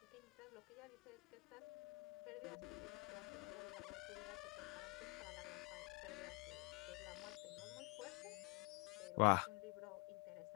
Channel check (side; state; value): right; quieter; 27.4 dB